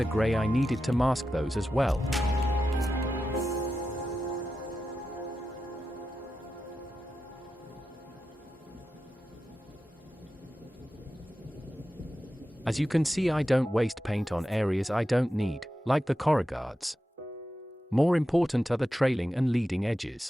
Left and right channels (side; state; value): both; normal; correlation 0.91